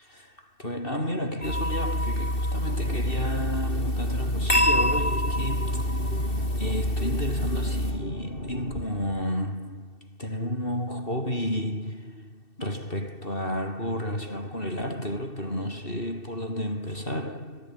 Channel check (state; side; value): late; right; 2.7 ms